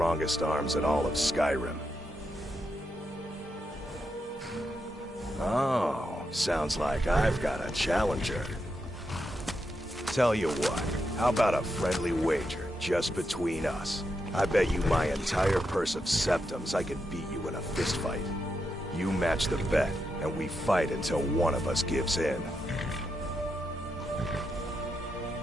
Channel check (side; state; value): both; normal; correlation 0.84